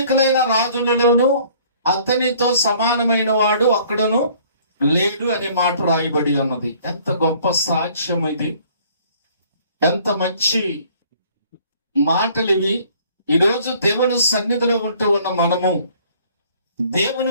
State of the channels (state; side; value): inverted; both; correlation -0.56